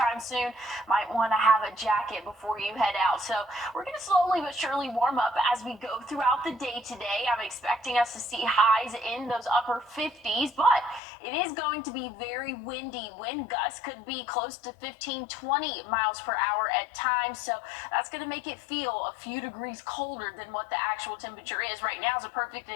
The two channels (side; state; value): right; drops out; at 11.0 s